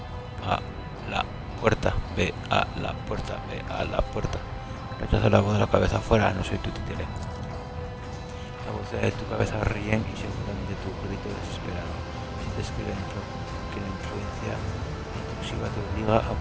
a la puerta, ve a la puerta, ve a la puerta. Rechaza la voz de la cabeza afuera, no soy tu títere. La voz de tu cabeza ríen y seguramente tu grito desesperado. Sientes que la influencia intrusiva te obliga a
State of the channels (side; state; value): both; identical; correlation 1.00